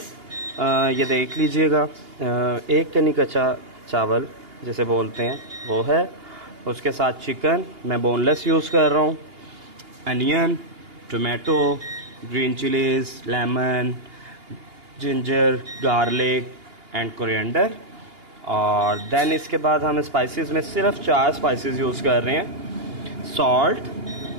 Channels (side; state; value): left; late; 2.8 ms